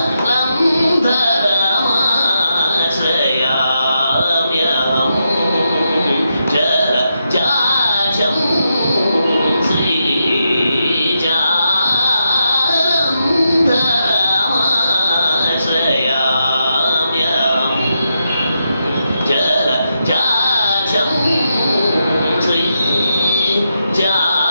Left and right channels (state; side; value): inverted; both; correlation -0.84